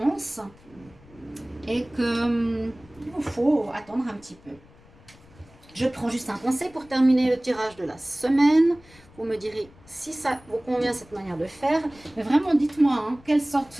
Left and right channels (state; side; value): noise; left; rumble, 25 dB below the sound